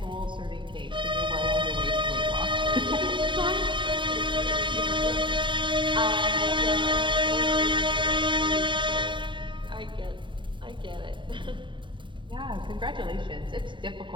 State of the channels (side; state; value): left; late; 0.23 ms